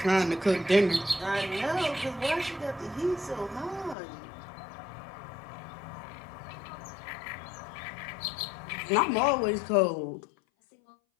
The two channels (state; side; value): drops out; right; at 4.0 s